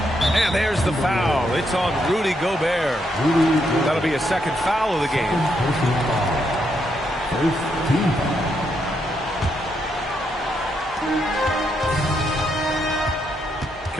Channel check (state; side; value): normal; both; correlation 0.78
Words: And there's the foul. It's on Rudy Gobert. That'll be a second foul of the game.